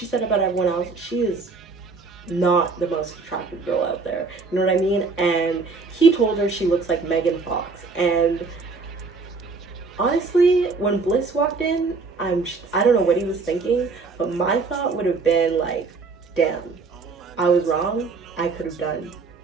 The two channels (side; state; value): left; quieter; 4.3 dB